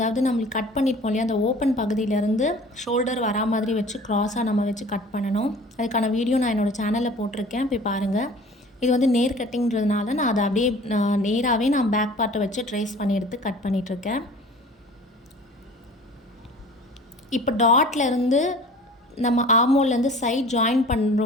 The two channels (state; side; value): normal; both; correlation 0.45